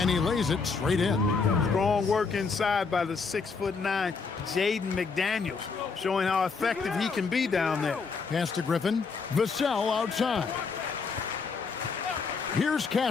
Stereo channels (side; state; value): right; quieter; 4.9 dB